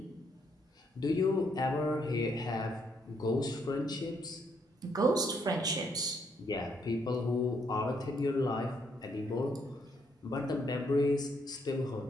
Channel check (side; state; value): both; normal; correlation 0.73